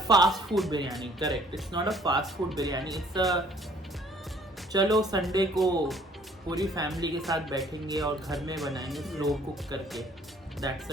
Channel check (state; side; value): normal; both; correlation 0.58